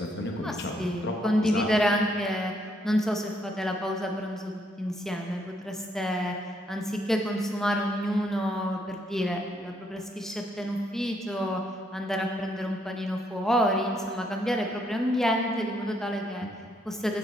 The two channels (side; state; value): both; normal; correlation 0.72